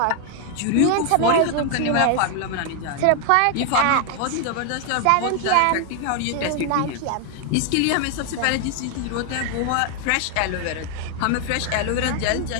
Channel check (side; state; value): both; different; correlation 0.01